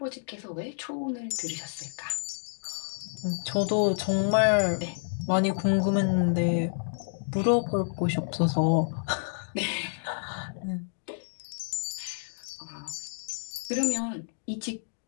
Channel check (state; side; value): silent; right; digital silence